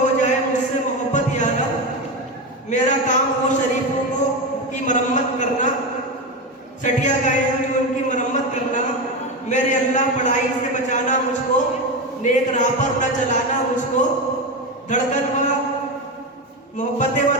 जाए मुझसे मोहब्बत यारब, मेरा काम हो शरीफों को की मरम्मत करना, सटिया गए हैं जो उनकी मरम्मत करना, मेरे अल्लाह पढ़ाई से बचाना मुझको, नेक राह पर न चलाना मुझको, धड़कन व मोहब्बतें व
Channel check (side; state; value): both; normal; correlation 0.17